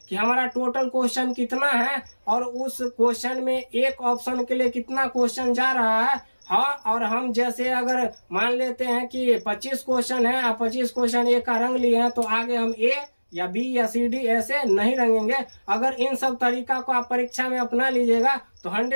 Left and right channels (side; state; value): both; inverted; correlation -1.00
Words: कि हमारा टोटल क्वेश्चन कितना है और उस क्वेश्चन में एक ऑप्शन के लिए कितना क्वेश्चन जा रहा है। हाँ, और हम जैसे अगर मान लेते हैं कि 25 क्वेश्चन है और 25 क्वेश्चन ए का रंग लिए हैं तो आगे हम ए या बी या सी डी ऐसे नहीं रंगेंगे। अगर इन सब तरीका को आप परीक्षा में अपना लीजिएगा तो